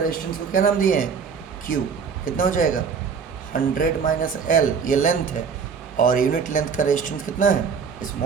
को क्या नाम दिए हैं Q। कितना हो जाएगा 100 माइनस L, ये लेंथ है, और यूनिट लेंथ का रेजिस्टेंस कितना है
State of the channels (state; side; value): quieter; left; 6.1 dB